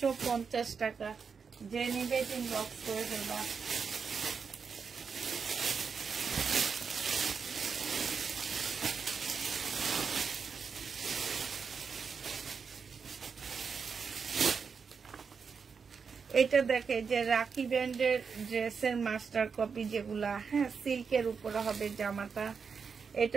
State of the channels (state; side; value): quieter; left; 5.8 dB